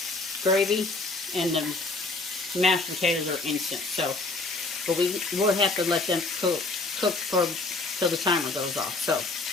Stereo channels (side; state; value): right; quieter; 3.4 dB